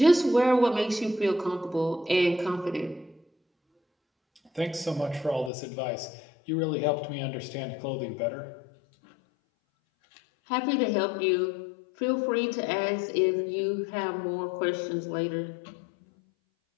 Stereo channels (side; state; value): right; drops out; at 5.5 s